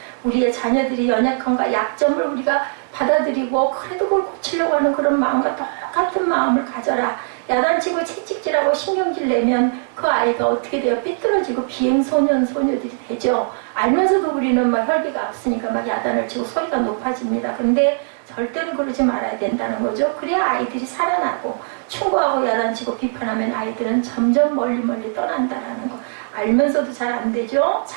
우리의 자녀들이 연약함과 약점을 우리가 받아들이고 그래도 그걸 고치려고 하는 그런 마음과 똑같은 마음을 가져라. 야단치고 채찍질하고 신경질 내면 그 아이가 어떻게 돼요? 삐뚤어지고 비행소년, 소녀들이 되죠. 알면서도 우리는 막 혈기가 앞서니까 막 야단을 치고 소리가 높아집니다. 근데 절대로 그러지 말아야 된다는 거죠. 그래야 아이들이 살아나고 충고하고 야단치고 비판하면 아이들은 점점 멀리 떠난다는 거. 알면서도 잘 안 되죠.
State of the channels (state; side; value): silent; left; 66 dB below the other